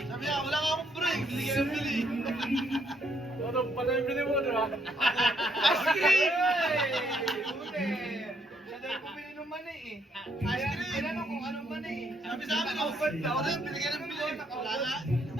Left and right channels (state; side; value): normal; both; correlation 0.72